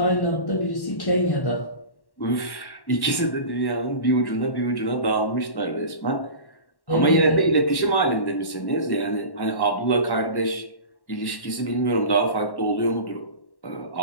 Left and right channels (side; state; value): right; late; 1.1 ms